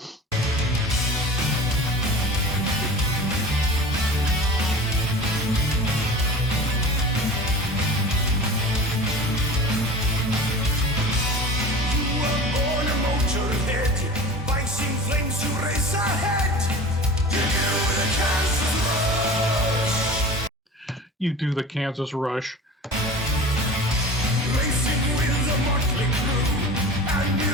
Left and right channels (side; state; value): both; normal; correlation 0.36